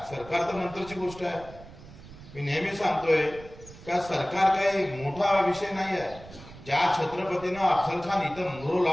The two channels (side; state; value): right; noise; rumble, 17 dB below the sound